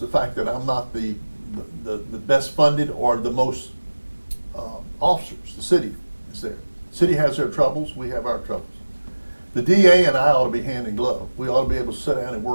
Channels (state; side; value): inverted; both; correlation -1.00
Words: fact that I'm not the best funded or the most officers. The city is there. The city has their troubles, we have our troubles. The DA and I ought to be hand in glove. We ought to be able to sit down and